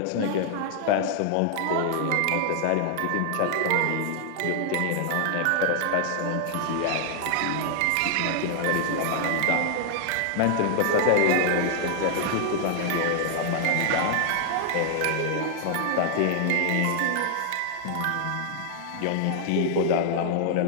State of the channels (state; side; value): different; both; correlation 0.00